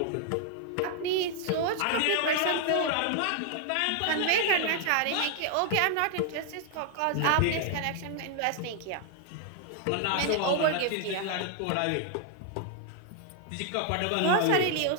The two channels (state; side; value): different; both; correlation 0.00